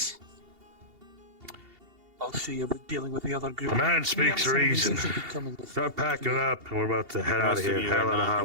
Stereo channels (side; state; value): left; late; 2.8 ms